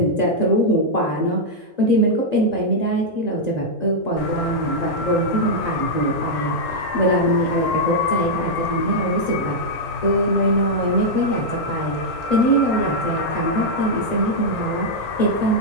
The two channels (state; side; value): normal; both; correlation -0.04